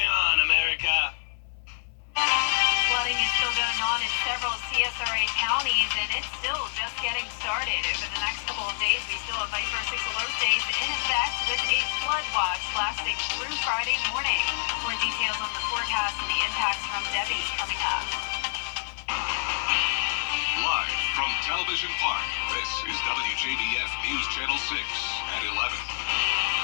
on, America. Flooding is still going on in several CSRA counties, and it's still just getting started. Over the next couple of days, we still have Viper 6 alert days in effect with a flood watch lasting through Friday morning. More details on the forecast and the impacts from Debbie coming up. Live from Television Park, this is WJBF News Channel 6 at 11.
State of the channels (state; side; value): silent; right; 60 dB below the other